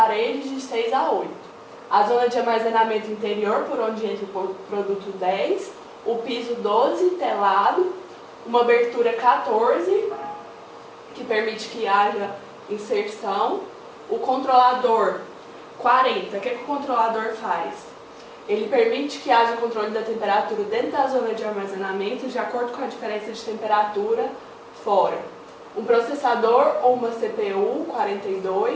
de 6 a 8. A zona de armazenamento interior, por onde entra o produto 10, o piso 12, telado, uma abertura 14, que permite que haja inserção, o controlador 40. O que o controlador faz? Ele permite que haja controle da temperatura dentro da zona de armazenamento, de acordo com a diferença de temperatura fora. Um processador ou uma CPU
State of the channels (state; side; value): identical; both; correlation 1.00